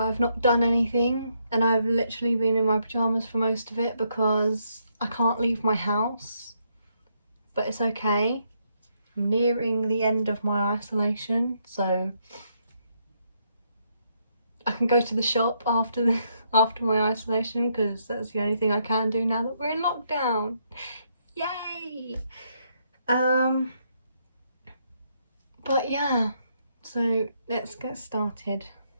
not done anything and I've literally been in my pyjamas for most of it because I can't leave my house. But it's okay. I'm nearing the end of my isolation, so I can go to the shop after my isolation because that's the only thing I can do now that we're in lockdown. Yay! But yeah, so let's get started.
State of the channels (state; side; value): inverted; both; correlation -0.76